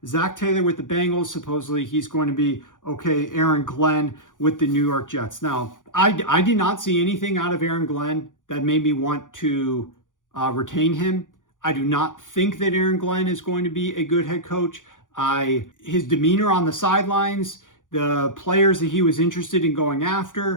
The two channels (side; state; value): right; late; 0.88 ms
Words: Zach Taylor with the Bengals, supposedly he's going to be okay. Aaron Glenn with the New York Jets. Now, I did not see anything out of Aaron Glenn that made me want to retain him. I do not think that Aaron Glenn is going to be a good head coach. His demeanor on the sidelines, the players that he was interested in going